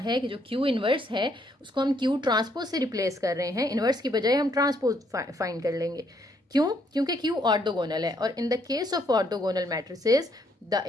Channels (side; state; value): both; normal; correlation 0.71